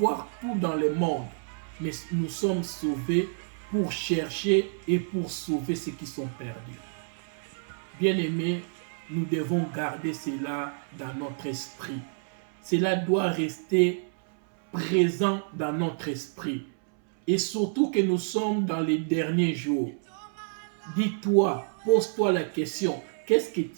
tout dans le monde. Mais nous sommes sauvés pour chercher et pour sauver ceux qui sont perdus. Bien-aimés, nous devons garder cela dans notre esprit. Cela doit rester présent dans notre esprit. Et surtout que nous sommes dans les derniers jours. Dis-toi, pose-toi la question, qu'est-ce que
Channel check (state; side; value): silent; left; 59 dB below the other